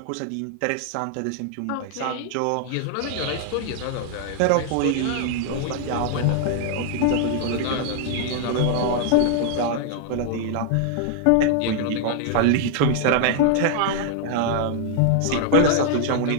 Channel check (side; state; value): both; different; correlation 0.00